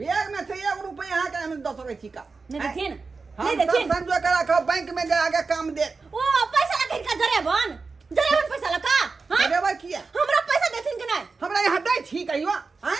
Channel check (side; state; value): left; quieter; 4.3 dB